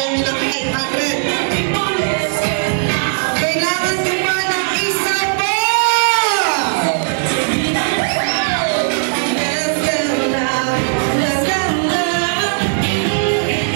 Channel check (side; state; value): left; silent; digital silence